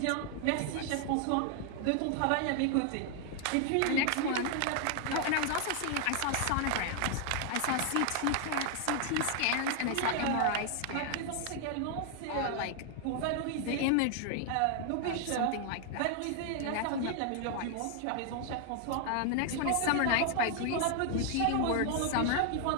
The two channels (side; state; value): both; different; correlation 0.00